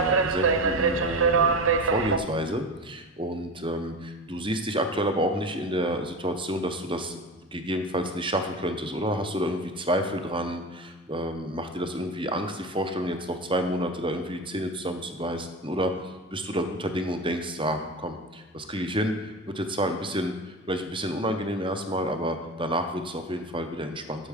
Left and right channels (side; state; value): both; normal; correlation 0.28